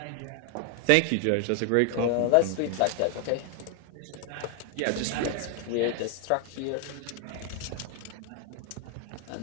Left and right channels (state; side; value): different; both; correlation 0.00